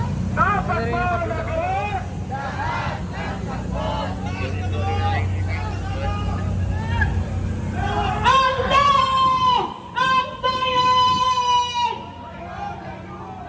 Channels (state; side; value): identical; both; correlation 1.00